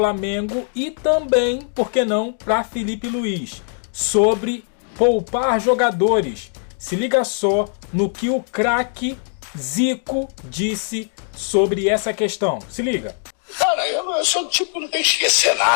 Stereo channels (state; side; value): silent; right; 57 dB below the other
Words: e também, por que não, para Felipe Luiz, sobre poupar jogadores. Se liga só no que o craque Zico disse sobre essa questão. Se liga. Cara, eu sou do tipo que não tem que esquecer